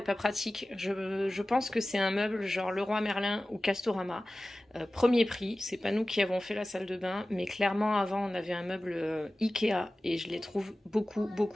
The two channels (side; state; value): both; normal; correlation 0.96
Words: pas pratique. Je pense que c'est un meuble genre Leroy Merlin ou Castorama. Premier prix, c'est pas nous qui avons fait la salle de bain, mais clairement avant on avait un meuble Ikea et je les trouve